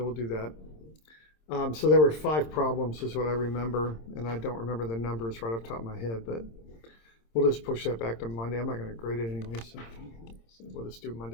we'll do that. So there were 5 problems is what I remember, and I don't remember the numbers right off the top of my head, but we'll just push that back to Monday. I'm not going to grade it anyway, so we'll just do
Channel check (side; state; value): right; late; 26 ms